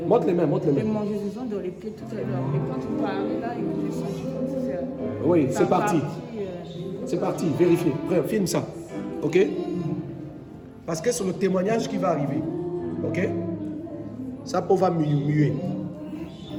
Montre les mains, montre les mains. démangeaison dans les pieds tout à l'heure. Mais quand tu parlais là, j'ai senti comme si Oui, ça c'est parti. partit, C'est parti, vérifiez. Frère, filme ça. Ok? Parce que c'est le témoignage qui va arriver. Ok? Ça peau va muer.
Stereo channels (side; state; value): both; identical; correlation 1.00